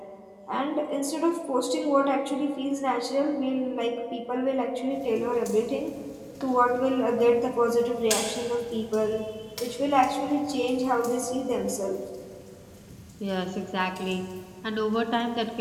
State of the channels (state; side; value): identical; both; correlation 1.00